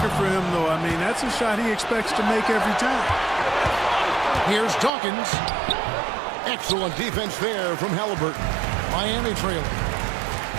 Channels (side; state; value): left; drops out; at 4.9 s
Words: for him, though. I mean, that's a shot he expects to make every time. Here's Dawkins. Excellent defense there from Halliburton. Miami trailing.